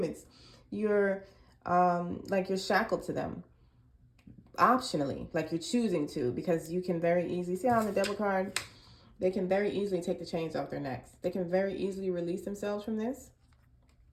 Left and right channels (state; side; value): identical; both; correlation 1.00